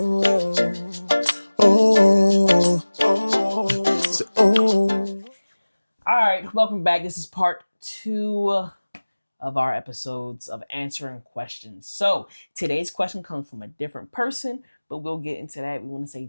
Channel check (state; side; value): inverted; both; correlation -1.00